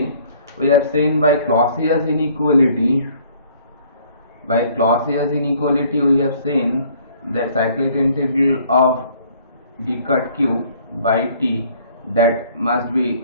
by Clausius inequality. By Clausius inequality, we have seen that cyclic integral of d cut q by t that must be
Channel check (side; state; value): both; inverted; correlation -0.58